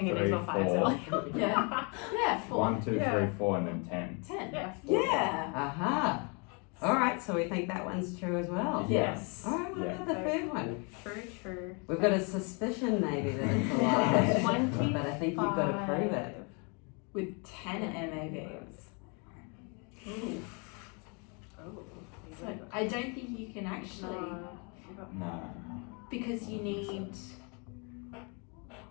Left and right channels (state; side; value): quieter; right; 33.9 dB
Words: image 3, on fire 4. cell. Yeah. Yeah, 4. 1, 2, Yeah. 3, 4, and then 10. 10. Yeah. Yeah. Aha. All right, so we think that one's true as well. Yes. All right, what Yeah. about the third one? True. We've got a suspicion maybe that it's a lie, 25. but I think you've got to prove it. With 10 MABs. Ooh. Oh. So I don't think you can actually, No. because you need,